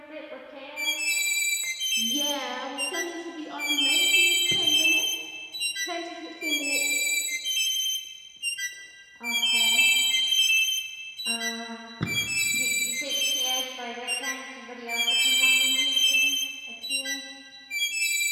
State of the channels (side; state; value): both; identical; correlation 1.00